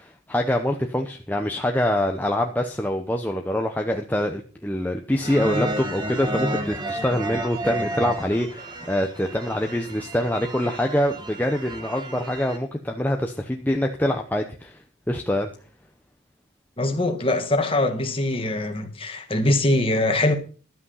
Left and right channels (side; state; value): both; normal; correlation 0.70